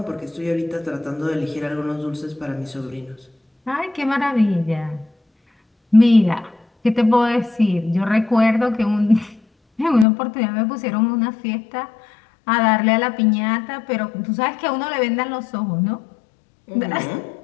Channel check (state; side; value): drops out; right; at 10.1 s